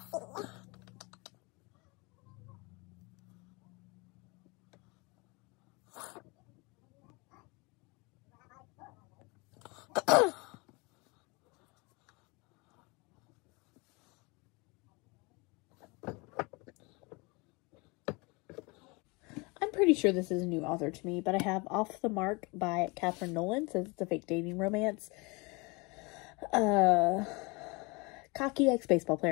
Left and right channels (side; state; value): right; quieter; 27.4 dB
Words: pretty sure this is a new author to me, but I have Off the Mark by Catherine Nolan. Says it's a fake dating romance. Cocky ex-baseball